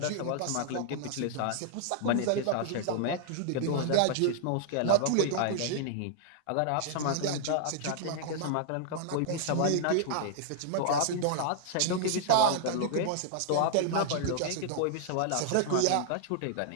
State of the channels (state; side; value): different; both; correlation -0.01